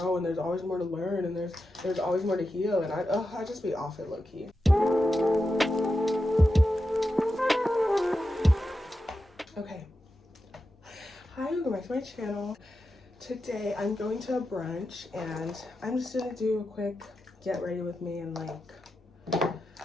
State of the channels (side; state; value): both; normal; correlation 0.90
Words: and there's always more to learn, and there's always more to heal, and I just be off it low-key. Okay, hi, welcome back to my channel. Today I'm going to a brunch, and I'm just gonna do a quick get ready with me and